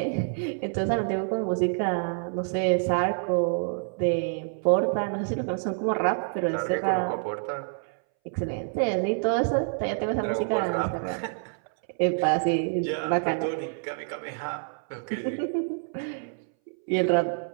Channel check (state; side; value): silent; left; 60 dB below the other